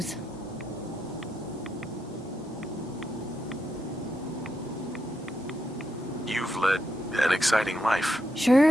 You've led an exciting life.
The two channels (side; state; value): both; normal; correlation 0.83